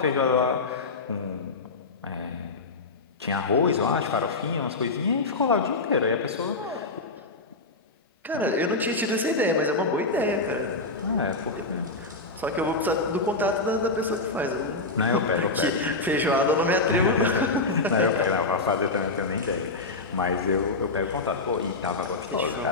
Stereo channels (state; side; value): quieter; right; 3.4 dB